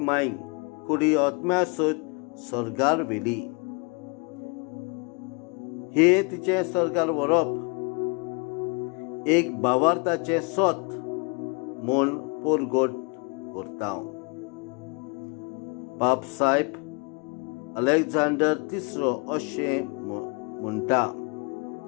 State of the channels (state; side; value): quieter; right; 32.3 dB